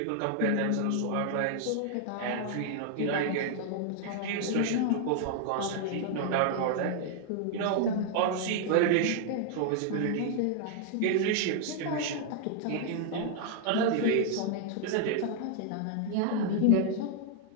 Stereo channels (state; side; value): different; both; correlation 0.00